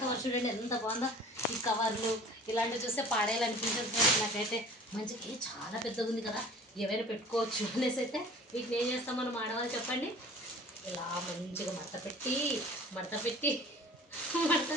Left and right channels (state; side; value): normal; both; correlation 0.46